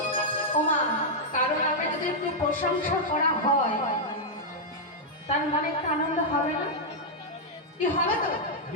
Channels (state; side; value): normal; both; correlation -0.04